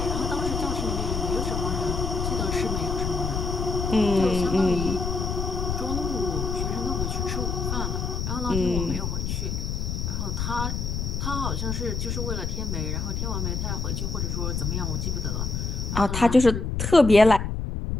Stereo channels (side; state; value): left; noise; rumble, 2 dB below the sound